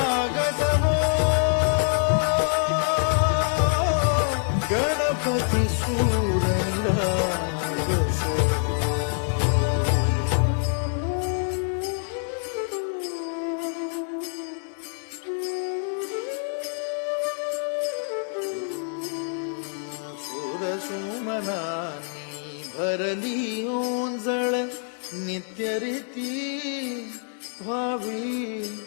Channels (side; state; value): right; silent; 61 dB below the other